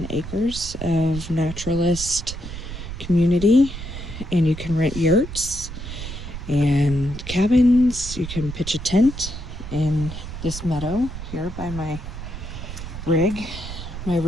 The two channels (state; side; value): noise; right; rumble, 9 dB below the sound